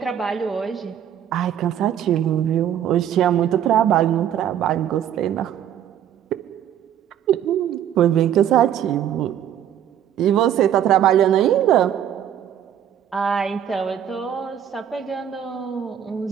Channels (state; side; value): quieter; left; 10.0 dB